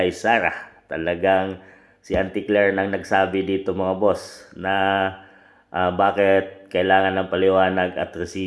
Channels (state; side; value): identical; both; correlation 1.00